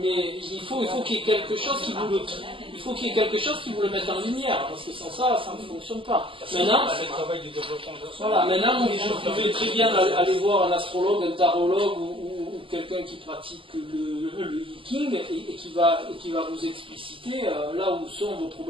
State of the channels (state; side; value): late; left; 0.25 ms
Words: il faut qu'il y ait quelque chose qui vous le mette en lumière, parce que sans ça, ça ne fonctionne pas. Maintenant, vous pouvez très bien aller voir un astrologue, un tarologue ou quelqu'un qui pratique le Viking et qui va vous expliciter là où sont vos